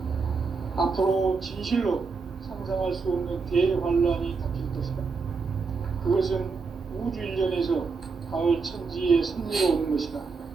앞으로 진실로 상상할 수 없는 대환란이 닥칠 것이다. 그것은 우주 일련에서 가을 천지의 섭리로 오는 것이다.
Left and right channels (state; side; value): quieter; left; 4.7 dB